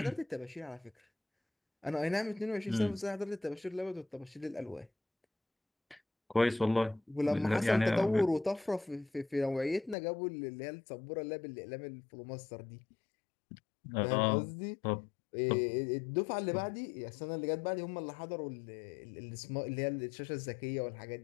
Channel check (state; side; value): drops out; right; at 10.0 s